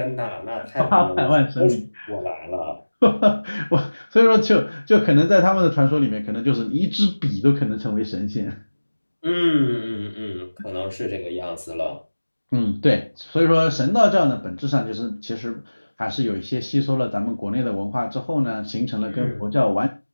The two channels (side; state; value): both; inverted; correlation -1.00